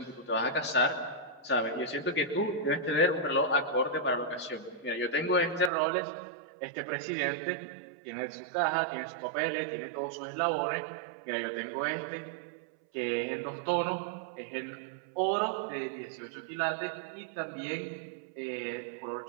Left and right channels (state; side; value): drops out; left; at 5.7 s